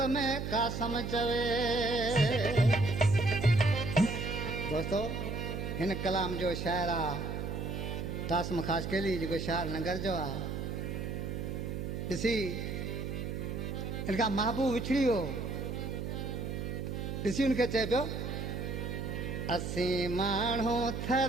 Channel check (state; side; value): noise; right; hum, 4 dB below the sound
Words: में कासम चवे। दोस्तों हिन कलाम जो शायर आहे तासम ख़ास केली जेको शायर नगर जो आहे। ॾिसी हिन खां महबूब विछड़ी वियो, ॾिसी हुनखे चए पियो असीं माण्हू